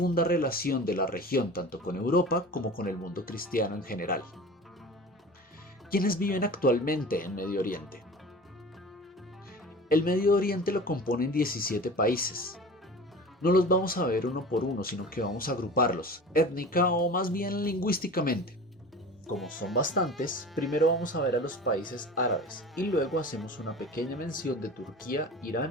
relación de la región tanto con Europa como con el mundo cristiano en general. ¿Quiénes viven actualmente en Medio Oriente? El Medio Oriente lo componen 17 países. No los vamos a ver uno por uno, sino que vamos a agruparlos, étnica o más bien lingüísticamente. Como son bastantes, primero vamos a ver a los países árabes y luego hacemos una pequeña mención de Turquía,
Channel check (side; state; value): both; normal; correlation 0.37